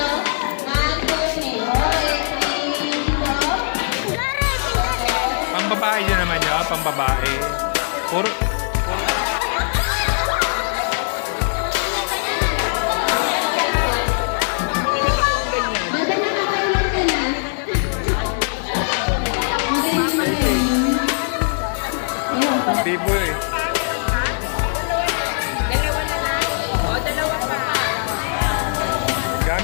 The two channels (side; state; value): right; silent; digital silence